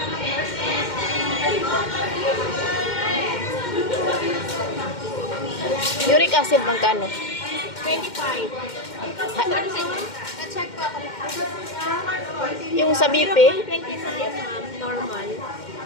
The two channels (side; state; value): right; late; 2.1 ms